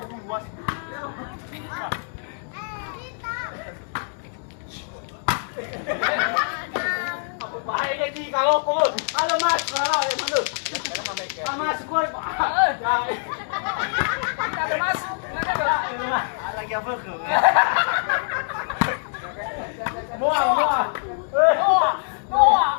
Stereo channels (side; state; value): right; silent; digital silence